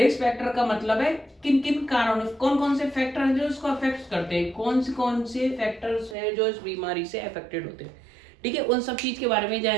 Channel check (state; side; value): drops out; left; at 6.2 s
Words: फैक्टर का मतलब है किन किन कारणों, कौन कौन से फैक्टर हैं जो इसको अफेक्ट करते हैं, कौन से फैक्टर्स हैं जो इस बीमारी से अफेक्टेड होते हैं। ठीक है, उन सब चीज के बारे में